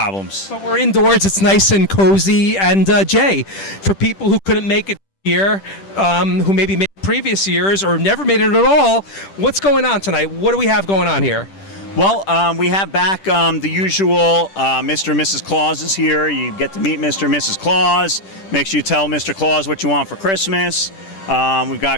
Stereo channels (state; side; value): late; right; 10 ms